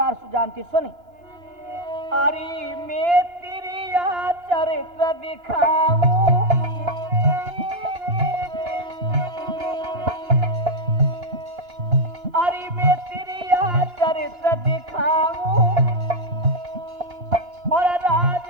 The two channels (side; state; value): left; late; 2.9 ms